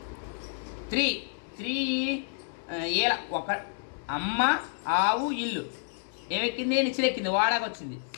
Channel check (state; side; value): silent; right; 58 dB below the other